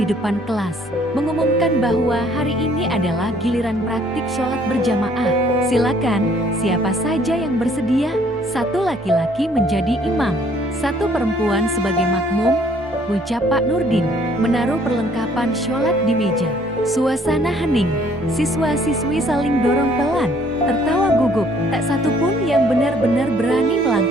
depan kelas, mengumumkan bahwa hari ini adalah giliran praktik sholat berjamaah. Silakan, siapa saja yang bersedia, satu laki-laki menjadi imam, satu perempuan sebagai makmum, ucap Pak Nurdin, menaruh perlengkapan sholat di meja. Suasana hening, siswa-siswi saling dorong pelan, tertawa gugup, tak satu pun yang benar-benar berani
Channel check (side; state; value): both; normal; correlation 0.61